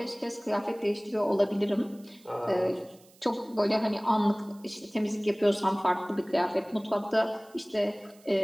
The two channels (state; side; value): noise; right; hiss, 27 dB below the sound